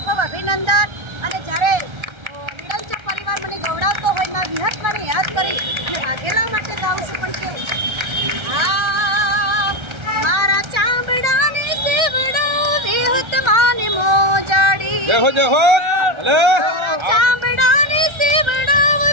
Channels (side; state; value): left; late; 1.3 ms